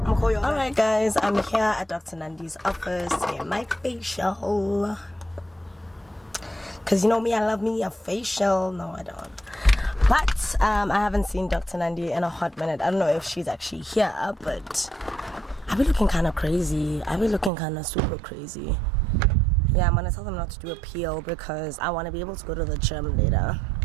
Alright guys, I'm here at Dr. Nandi's office to get my facial. Because you know me, I love me a facial. No, I don't. But I haven't seen Dr. Nandi in a hot minute. I don't know if she's actually here, but I've been looking kind of crazy. I've been looking kind of super crazy. Yeah, I'm going to tell them not to do a peel because I want to be able to go to the gym later.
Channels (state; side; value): drops out; left; at 17.5 s